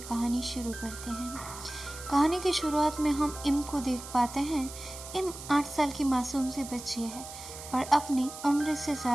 कहानी शुरू करते हैं। कहानी की शुरुआत में हम इम को देख पाते हैं। इम 8 साल की मासूम सी बच्ची है, पर अपनी उम्र से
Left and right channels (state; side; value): noise; right; hiss, 12 dB below the sound